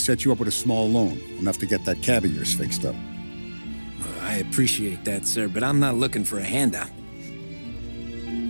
you up with a small loan, enough to get that cab of yours fixed up. I appreciate that, sir, but I'm not looking for a handout.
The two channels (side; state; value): both; inverted; correlation -1.00